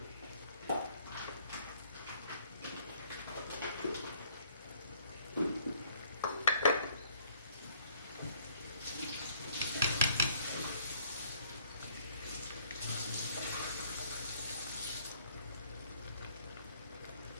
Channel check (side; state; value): both; inverted; correlation -0.63